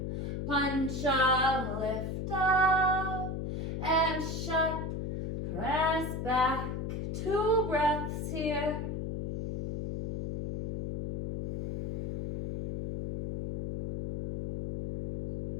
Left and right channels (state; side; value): noise; left; hum, 3 dB below the sound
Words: Pancha, lift up. And shut, press back. 2 breaths here.